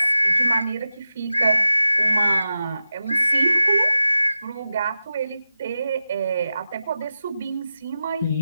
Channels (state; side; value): inverted; both; correlation -0.92